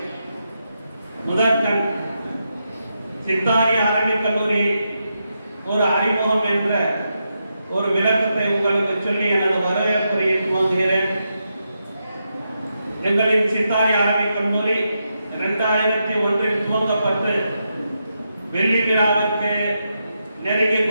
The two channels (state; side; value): inverted; both; correlation -0.85